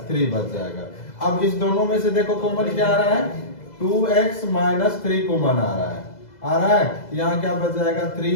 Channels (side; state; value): right; late; 2.0 ms